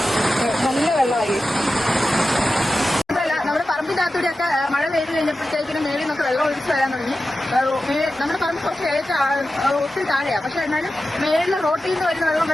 നല്ല വെള്ളമായി. നമ്മുടെ പറമ്പിന്റെ അകത്തൂടെയൊക്കെ മഴ പെയ്ത് കഴിഞ്ഞപ്പോഴത്തേക്കിനും മേളിൽ നിന്നൊക്കെ വെള്ളം ഒഴിച്ച് വരാൻ തുടങ്ങി. നമ്മുടെ പറമ്പ് കുറച്ച് ഒത്തിരി താഴെയാണ്. പക്ഷെ എന്നാലും മേളിലെ റോട്ടിൽ നിന്ന് വരുന്ന വെള്ളം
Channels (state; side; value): normal; both; correlation 0.93